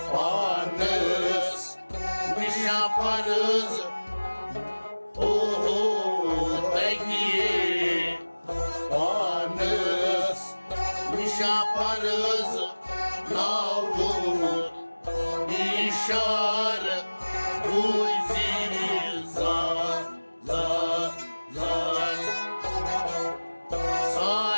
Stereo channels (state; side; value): inverted; both; correlation -1.00